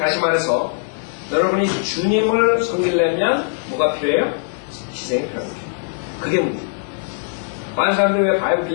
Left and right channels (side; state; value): right; silent; digital silence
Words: 말해서 여러분이 주님을 섬기려면 뭐가 필요해요? 희생이 필요한 거죠. 그게 문제. 많은 사람들이 왜 바이블